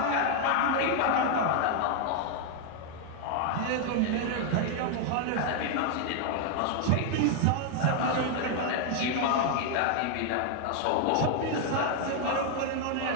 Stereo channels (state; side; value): different; both; correlation 0.00